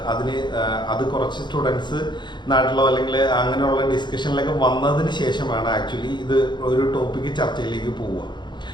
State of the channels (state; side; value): late; right; 0.22 ms